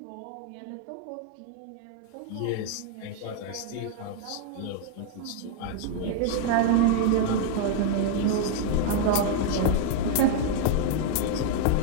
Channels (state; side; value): different; both; correlation 0.00